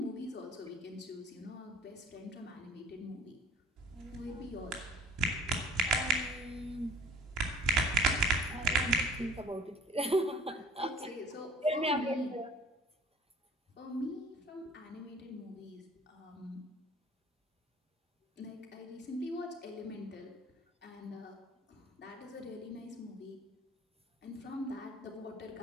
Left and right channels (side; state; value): both; normal; correlation 0.48